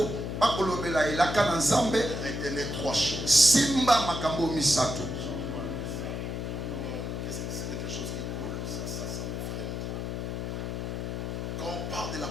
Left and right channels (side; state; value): left; noise; hum, 4 dB below the sound